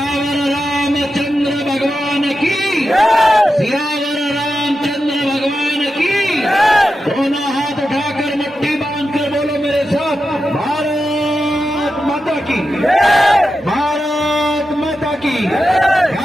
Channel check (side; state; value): both; normal; correlation 0.90